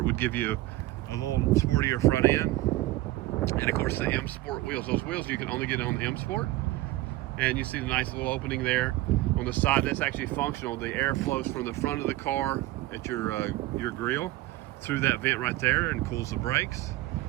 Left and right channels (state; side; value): quieter; left; 17.5 dB